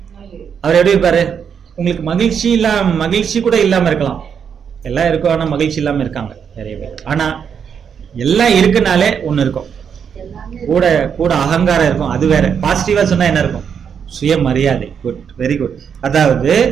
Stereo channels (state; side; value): quieter; left; 7.3 dB